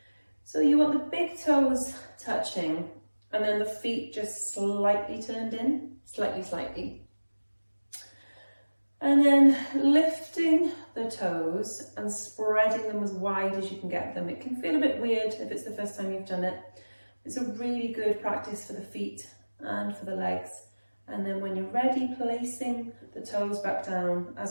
So you want the big toes touching and then the feet just slightly turned in, slightly. And then lifting the toes and spreading them as wide as you can get them. It can feel a bit weird if it's the first time you've done it. It's a really good practice for the feet and for the legs. And then when you're ready, placing the toes back down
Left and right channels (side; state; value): both; inverted; correlation -1.00